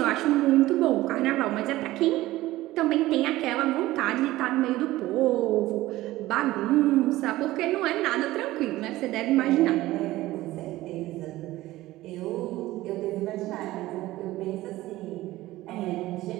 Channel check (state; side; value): quieter; left; 17.0 dB